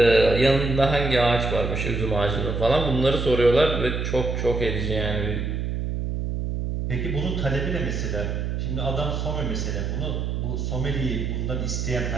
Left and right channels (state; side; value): noise; right; hum, 2 dB below the sound